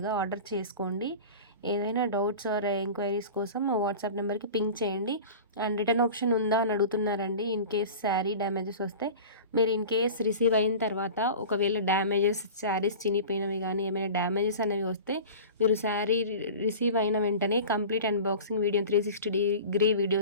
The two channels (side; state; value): both; inverted; correlation -0.36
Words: ఆర్డర్ చేసుకోండి. ఏదైనా డౌట్స్ ఆర్ ఎంక్వైరీస్ కోసం మా వాట్సాప్ నెంబర్కి పింక్ చేయండి. అండ్ రిటర్న్ ఆప్షన్ ఉందా అని అడుగుతున్నారండి. ఇన్ కేస్ శారీ డ్యామేజెస్ వస్తే మీరు ఇన్ కేస్ రిసీవ్ అయిన తర్వాత ఒకవేళ డ్యామేజెస్ శారీస్ చినిపోయినవి కానీ ఏమైనా డ్యామేజెస్ అనేవి వస్తే మీరు శారీ రిసీవ్ అయిన వెంటనే complete unboxing video 360 degree